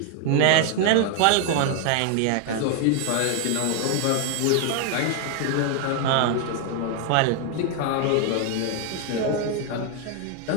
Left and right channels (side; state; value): both; different; correlation 0.00